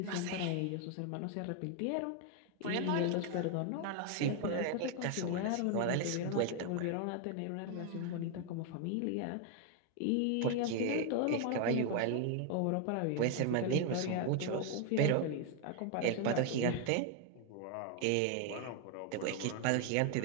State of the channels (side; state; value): both; different; correlation 0.00